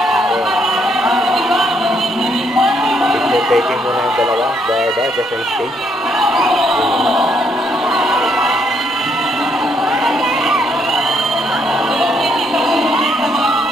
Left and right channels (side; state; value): both; normal; correlation 0.72